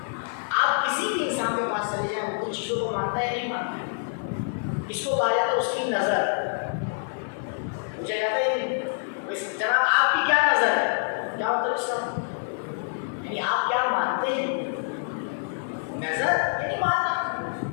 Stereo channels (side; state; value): right; silent; 59 dB below the other